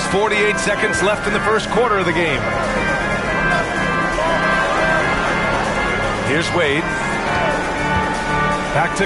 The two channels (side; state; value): both; identical; correlation 1.00